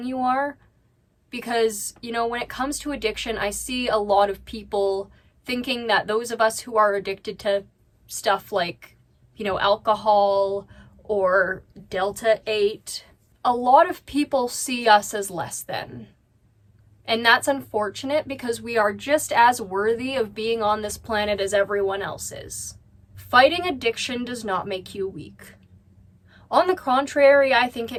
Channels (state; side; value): identical; both; correlation 1.00